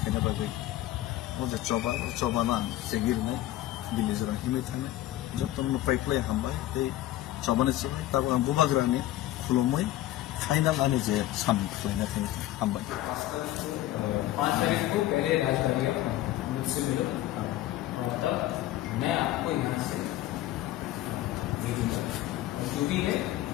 khena ba gai oje choba na segir me dilli jara hime thane jotton no pipeline hambai te choba ne chibai tab ang bubagra ni khulomai final ani je sam khleina khani hambai 5 तारीख को पहले राजधानी मुझसे मिलो और तब मैं आपको यहाँ से भेजूंगा जो भी है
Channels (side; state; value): right; quieter; 14.7 dB